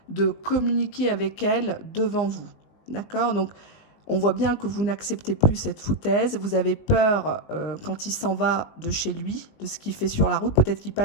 de communiquer avec elles devant vous. D'accord? Donc, on voit bien que vous n'acceptez plus cette foutaise. Vous avez peur quand il s'en va de chez lui, de ce qu'il fait sur la route. Peut-être qu'il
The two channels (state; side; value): late; right; 19 ms